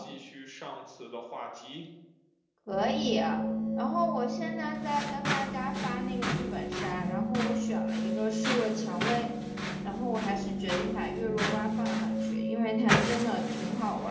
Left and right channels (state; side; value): identical; both; correlation 1.00